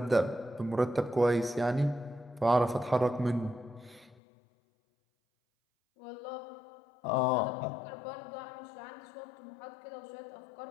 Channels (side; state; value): right; drops out; at 4.2 s